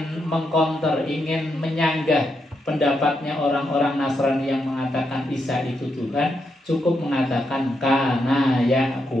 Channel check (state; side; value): normal; both; correlation 0.82